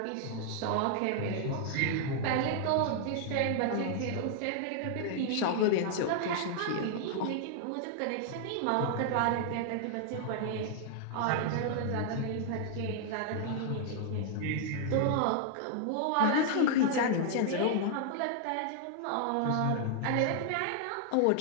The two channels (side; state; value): both; different; correlation -0.01